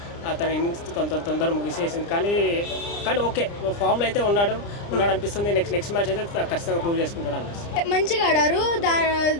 తన ఇన్నింగ్స్ తొందరగా ముగిసేసింది. కానీ ఓకే, ఫామ్లో అయితే ఉన్నాడు అనిపిస్తుంది. నెక్స్ట్ మ్యాచ్ అయితే ఖచ్చితంగా ప్రూవ్ చేసుకుంటాడు అనిపిస్తుంది. మంచిగా ఆడారు.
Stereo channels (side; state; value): right; late; 30 ms